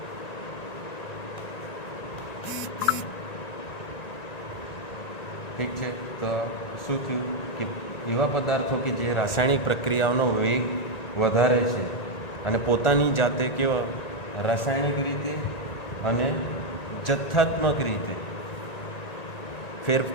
ઠીક છે, તો શું થયું કે એવા પદાર્થો કે જે રાસાયણિક પ્રક્રિયાઓનો વેગ વધારે છે અને પોતાની જાતે કેવા રાસાયણિક રીતે અને જથ્થાત્મક રીતે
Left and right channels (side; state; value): right; late; 1.9 ms